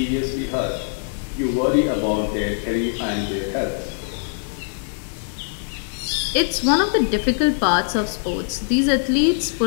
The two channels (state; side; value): silent; right; digital silence